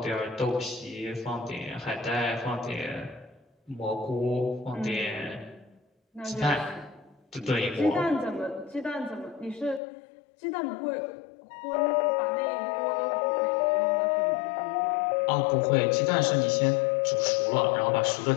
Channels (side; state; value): right; drops out; at 9.8 s